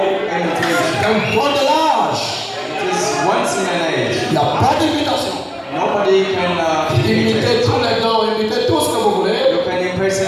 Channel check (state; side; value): identical; both; correlation 1.00